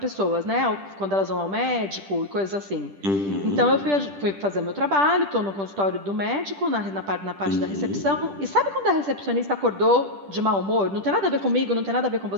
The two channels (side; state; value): left; late; 10 ms